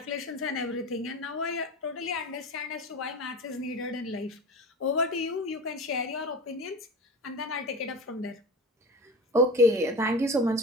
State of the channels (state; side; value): normal; both; correlation 0.31